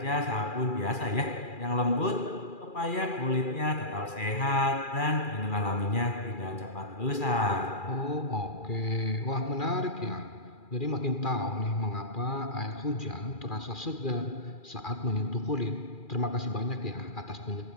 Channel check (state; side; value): late; right; 2.4 ms